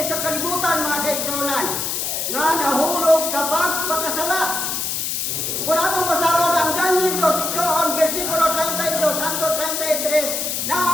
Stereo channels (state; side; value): noise; left; hiss, 1 dB below the sound